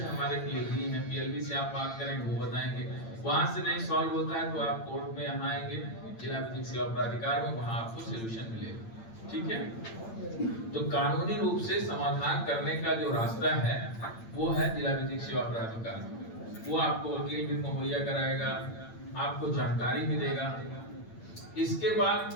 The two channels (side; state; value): right; late; 8.9 ms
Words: हमारे पीएलबी हैं, पीएलबी से आप बात करेंगे वो बताएंगे। वहां से नहीं सॉल्व होता है तो आप कोर्ट में यहाँ आएंगे, जिला विधिक सेवा प्राधिकार में, वहां आपको सोल्यूशन मिलेगा। ठीक है, तो कानूनी रूप से समाधान करने का जो रास्ता है वो है जिला विधिक सेवा प्राधिकार। वो आपको वकील भी मुहैया कराएगा, आपको जानकारी भी देगा। इसके बाद